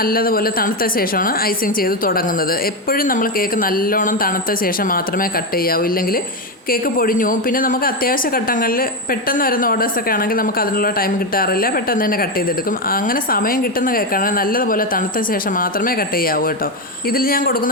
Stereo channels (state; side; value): normal; both; correlation 0.10